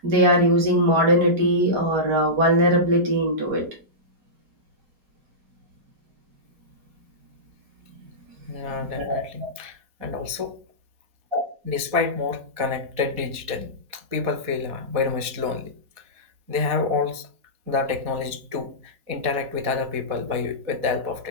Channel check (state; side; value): late; left; 4.2 ms